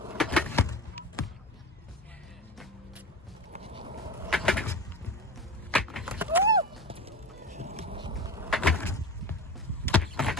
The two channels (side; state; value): both; normal; correlation 0.30